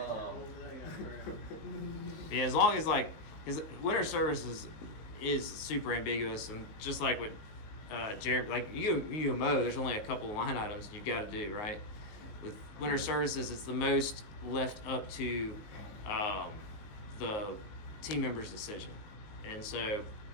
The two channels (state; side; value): late; right; 19 ms